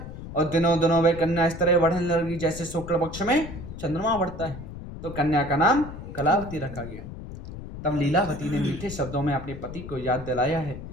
और दिनों दिनों वह कन्या इस तरह बढ़ने लगी जैसे शुक्ल पक्ष में चंद्रमा बढ़ता है। तो कन्या का नाम कलावती रखा गया। तब लीलावती ने मीठे शब्दों में अपने पति को याद दिलाया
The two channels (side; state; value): left; noise; rumble, 11 dB below the sound